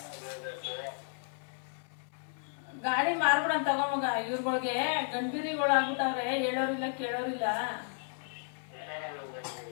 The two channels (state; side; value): silent; right; digital silence